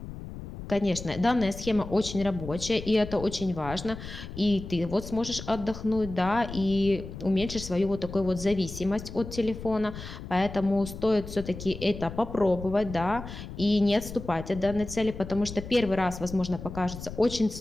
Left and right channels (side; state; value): left; noise; rumble, 11 dB below the sound